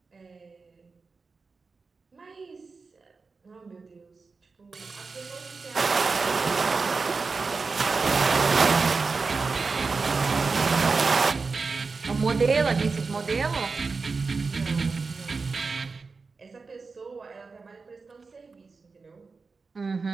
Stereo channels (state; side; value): quieter; left; 4.4 dB